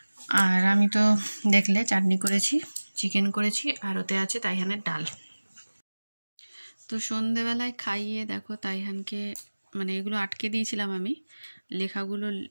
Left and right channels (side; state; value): both; inverted; correlation -1.00